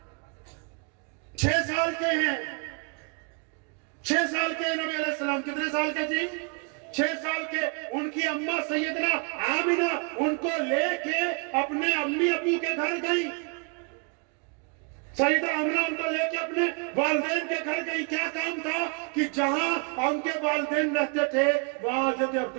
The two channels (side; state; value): left; quieter; 35.8 dB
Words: 6 साल के हैं, 6 साल के नबी अलैहिस्सलाम। कितने साल के जी? 6 साल के। उनकी अम्मा सैयदना आमिना उनको लेके अपने अम्मी अबू के घर गई। सैयदा आमिना उनको लेके अपने वालिदैन के घर गई। क्या काम था कि जहां उनके वालिदैन रहते थे वहां हज़रत